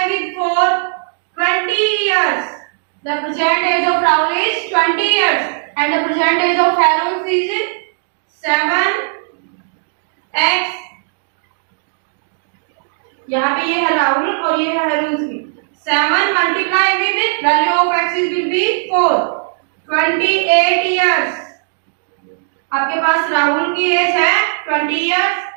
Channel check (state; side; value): silent; left; digital silence